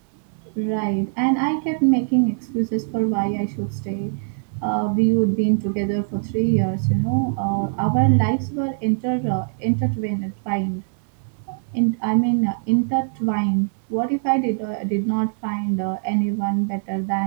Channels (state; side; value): silent; left; 61 dB below the other